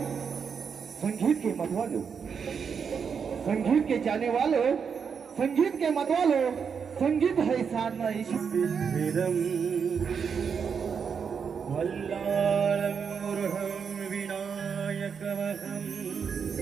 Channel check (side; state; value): left; quieter; 6.5 dB